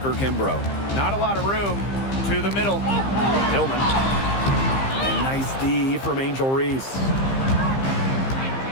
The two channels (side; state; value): right; late; 15 ms